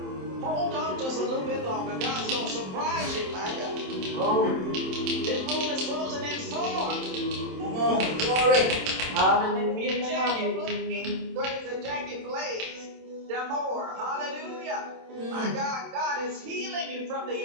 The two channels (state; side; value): late; left; 27 ms